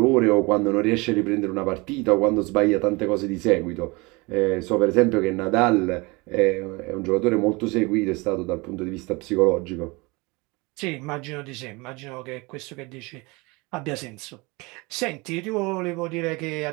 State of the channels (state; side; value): quieter; left; 25.6 dB